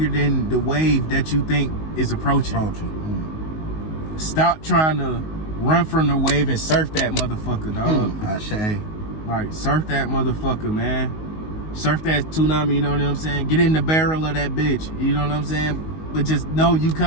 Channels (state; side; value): late; right; 19 ms